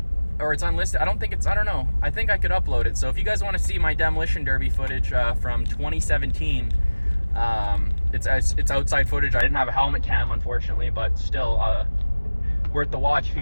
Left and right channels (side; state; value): both; inverted; correlation -1.00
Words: or it's unlisted. I don't know. I think I could upload it. So if you guys want to see my demolition derby footage from 2017, it's outside footage. I didn't have a helmet cam, unfortunately, but still worth the watch. If you